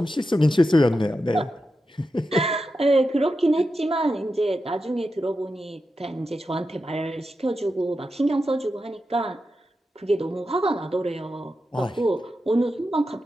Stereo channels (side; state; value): both; normal; correlation 0.89